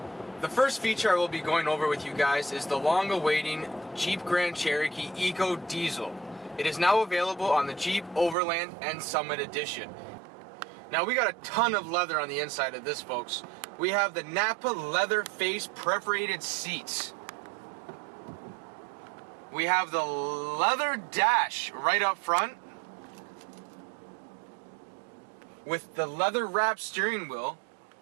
The first feature I will be going over with you guys is the long-awaiting Jeep Grand Cherokee EcoDiesel. It is now available on the Jeep Overland and Summit Edition. Now, we got a ton of leather on the inside of this, folks. We have the NAPPA leather face perforated seats. We have the leather dash right up front with the leather wrapped steering wheel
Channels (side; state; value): left; drops out; at 8.3 s